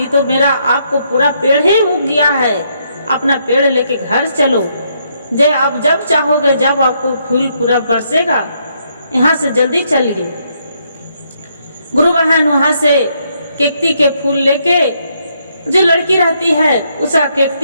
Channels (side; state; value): both; inverted; correlation -0.74